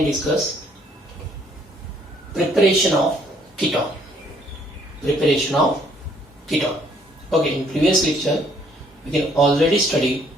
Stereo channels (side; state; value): both; normal; correlation 0.64